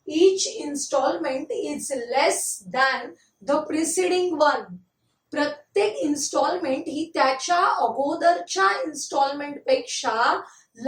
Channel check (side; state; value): both; identical; correlation 1.00